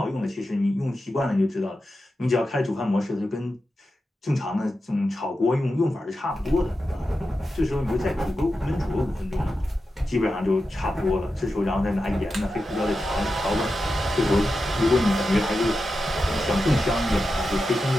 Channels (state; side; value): normal; both; correlation 0.90